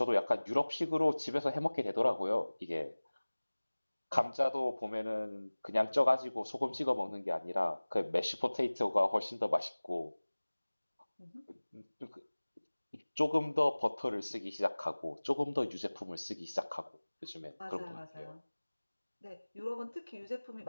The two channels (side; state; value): both; inverted; correlation -1.00